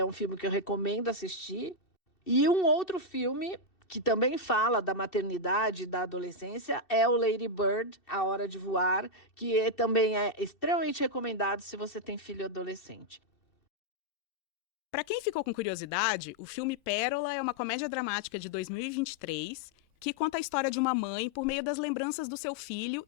um filme que eu recomendo assistir. E um outro filme que também fala da maternidade e da adolescência é o Lady Bird, A Hora de Voar, que também é extremamente recomendado se você tem filho adolescente. Para quem ficou com curiosidade, o filme Pérola é uma comédia dramática de 2023 que conta a história de uma mãe por meio das lembranças do seu filho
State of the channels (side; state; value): right; late; 2.7 ms